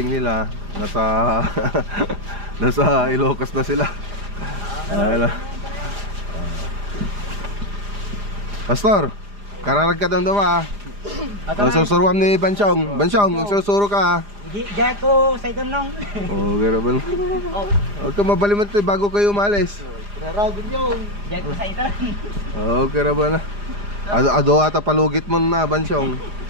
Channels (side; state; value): left; late; 4.9 ms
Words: nila nasa Ilocos na sila. Ayan. Pastor, kararag ka doon susuruan ni Bansyong. Bansyong, susuro ka Diyan ko sa itong nang. Garaban. Huwag ka mabalimot bago kayo umalis. Kararagin yung diyan ko sa itong. Garaban na. Ado ata palugit mo na, Bansyong.